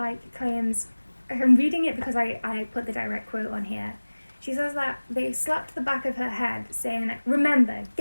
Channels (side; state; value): both; inverted; correlation -1.00